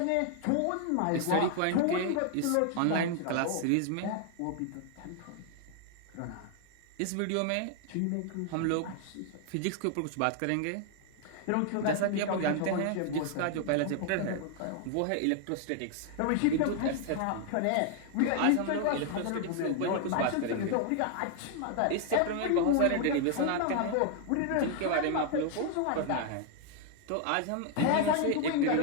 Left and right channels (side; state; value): both; different; correlation 0.00